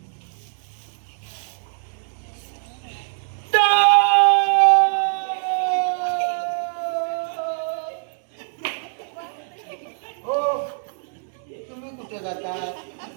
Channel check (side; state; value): left; silent; digital silence